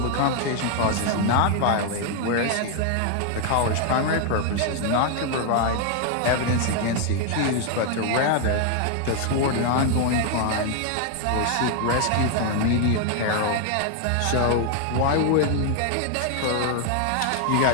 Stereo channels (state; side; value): different; both; correlation 0.00